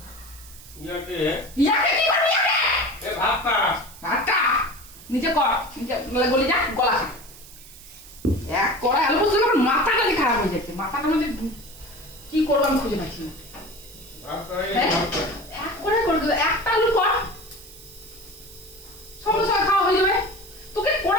ইয়াকে কি করবি? ভাতটা নিচে কর, নিচে গলে যা, গলা খা। এক কড়াই আলু পোস্ত করে মাথাটা খারাপ হয়ে যাচ্ছে। মাথাটা মানে কি করবো আমি খুঁজে পাচ্ছি না। এক করে একটা আলু কর,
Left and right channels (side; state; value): right; noise; hiss, 19 dB below the sound